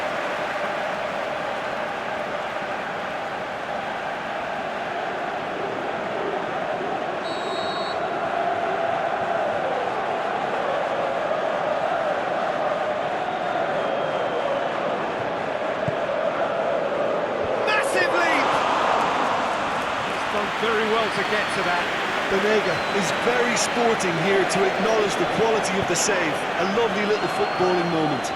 Very well to get to that. Banega is very sporting here to acknowledge the quality of the save. A lovely little footballing moment.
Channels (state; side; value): identical; both; correlation 1.00